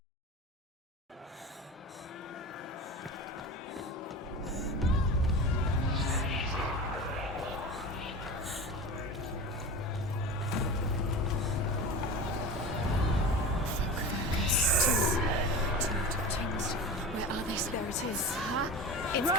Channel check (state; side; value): normal; both; correlation 0.31